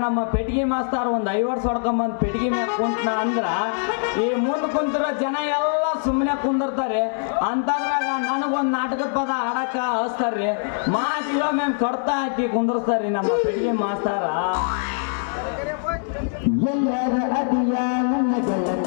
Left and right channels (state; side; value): silent; right; digital silence